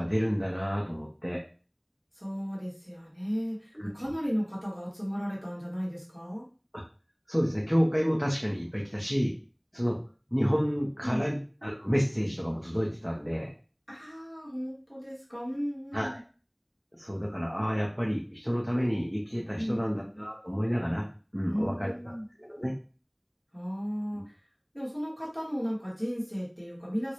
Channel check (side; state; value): both; identical; correlation 1.00